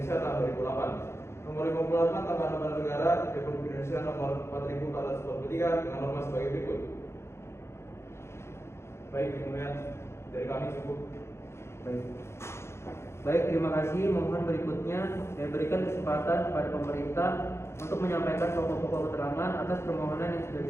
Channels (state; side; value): late; right; 0.13 ms